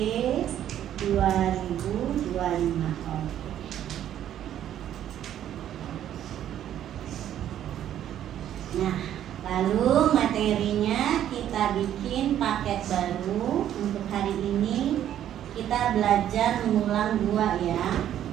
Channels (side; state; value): left; quieter; 11.0 dB